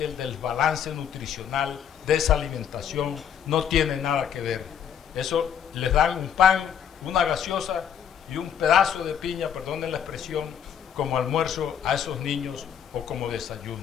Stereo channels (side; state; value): right; quieter; 8.6 dB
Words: el desbalance nutricional de esa alimentación no tiene nada que ver. Eso les dan un pan, una gaseosa y un pedazo de piña, perdonen la expresión, como almuerzo a esos niños o como desayuno.